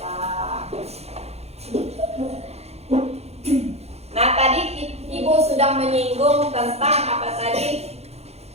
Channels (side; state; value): left; late; 0.31 ms